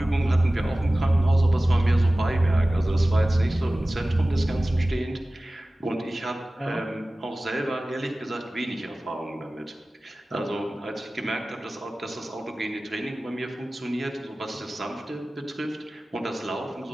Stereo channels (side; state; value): both; normal; correlation 0.97